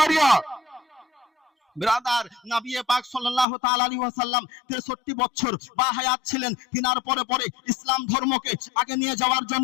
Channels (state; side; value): drops out; right; at 3.5 s